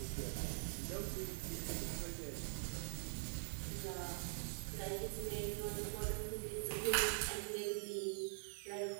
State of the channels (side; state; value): left; silent; digital silence